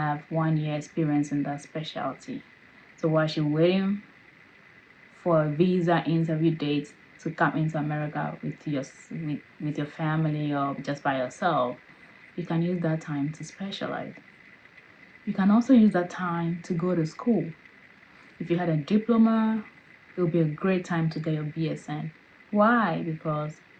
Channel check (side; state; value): both; identical; correlation 1.00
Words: 1 year experience in that specialty. So while you're waiting for a visa interview date to come into America with your family or just by yourself, you can use that time to specialize. You can also use that time to go to school. If you had a diploma, it would be a great time to get your BSN. Why? Because